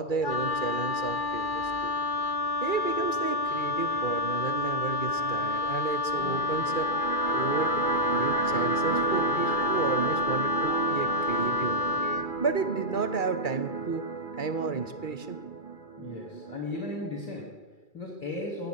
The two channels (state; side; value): late; right; 2.3 ms